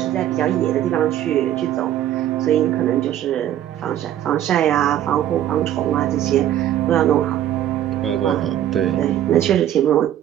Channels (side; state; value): left; quieter; 11.7 dB